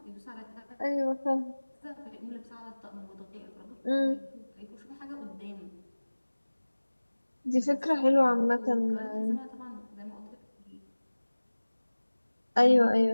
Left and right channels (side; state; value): both; inverted; correlation -1.00